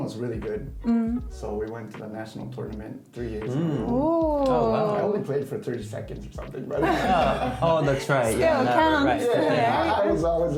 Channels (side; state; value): both; identical; correlation 1.00